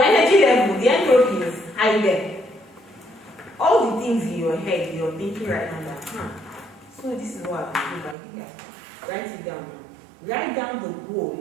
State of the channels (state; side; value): drops out; left; at 8.2 s